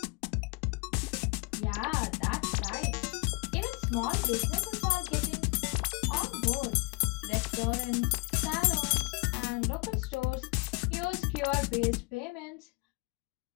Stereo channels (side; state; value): right; quieter; 30.1 dB